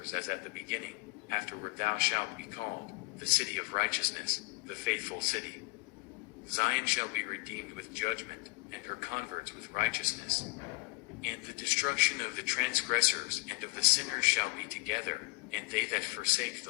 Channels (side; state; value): right; quieter; 27.1 dB